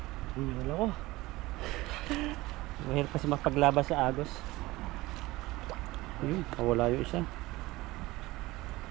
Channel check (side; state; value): left; quieter; 19.6 dB